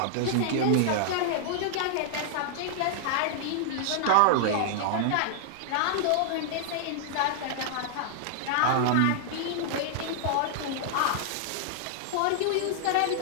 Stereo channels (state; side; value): different; both; correlation -0.01